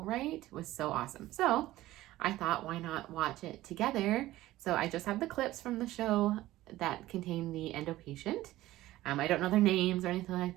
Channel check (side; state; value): left; quieter; 16.1 dB